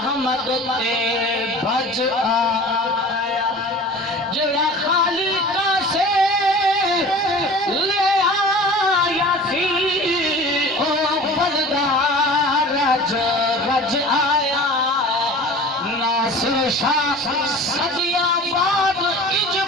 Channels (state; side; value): normal; both; correlation 0.40